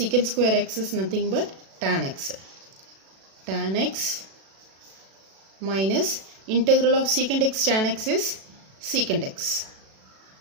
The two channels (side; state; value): left; late; 37 ms